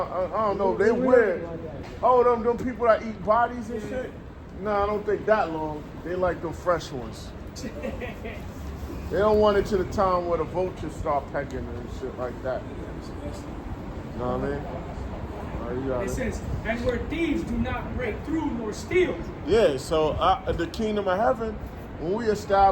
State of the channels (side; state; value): both; identical; correlation 1.00